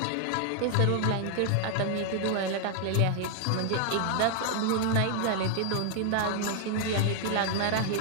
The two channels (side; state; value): both; different; correlation 0.00